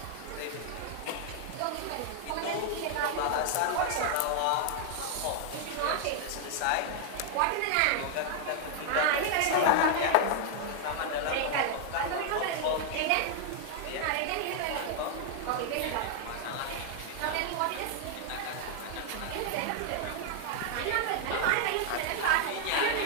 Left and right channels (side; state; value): both; different; correlation 0.00